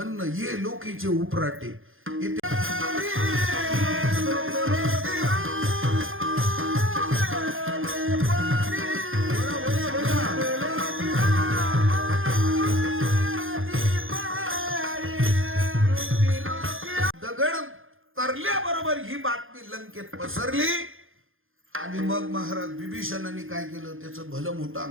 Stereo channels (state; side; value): late; left; 0.59 ms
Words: ये लोकीचे उपराटे इथे दगड तरल्याबरोबर ही बातमी लंकेत पसरली. आणि मग महाराज बिभीषणाने काय केलं? त्याचं भलं मोठं